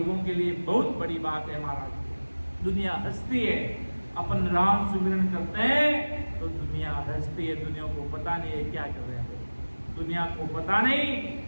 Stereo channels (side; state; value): both; inverted; correlation -1.00